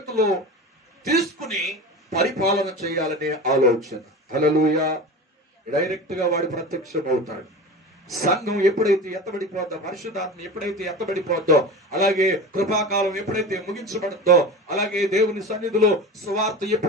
తీసుకుని పరిపాలన చేయాలనే ఆలోచన. హల్లెలూయా. డైరెక్ట్ గా వాడు ప్రత్యక్షం అవుతాడు. సంఘం ఎప్పుడైతే ఎత్తబడిపోద్దో, పరిశుద్ధాత్మ ఎప్పుడైతే ఎత్తబడిపోద్దో, అలాగే కృపాకాలం ఎప్పుడైతే ముగించబడద్దో, అలాగే దేవుని సన్నిధిలో సువార్త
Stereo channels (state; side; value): normal; both; correlation 0.30